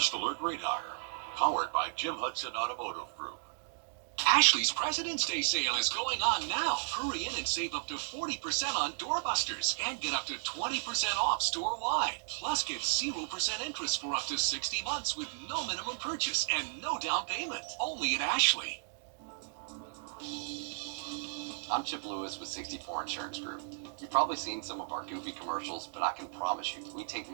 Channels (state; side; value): silent; left; digital silence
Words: Alert Radar, powered by Jim Hudson Automotive Group. Ashley's President's Day sale is going on now. Hurry in and save up to 40% on doorbusters and get up to 20% off store-wide. Plus, get 0% interest for up to 60 months with no minimum purchase and no down payment. Only at Ashley. I'm Chip Lewis with 64 Insurance Group. You've probably seen some of our goofy commercials, but I can promise you, we take